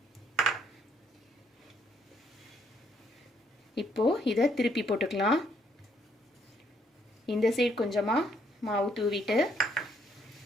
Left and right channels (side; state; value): both; normal; correlation 0.69